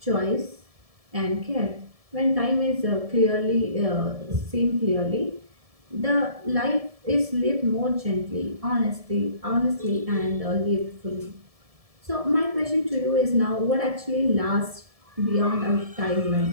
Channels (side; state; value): left; late; 1.7 ms